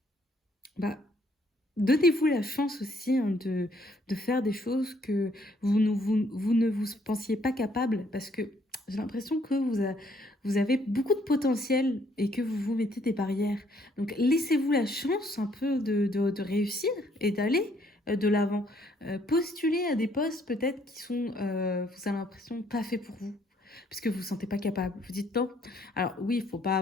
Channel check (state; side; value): normal; both; correlation 0.66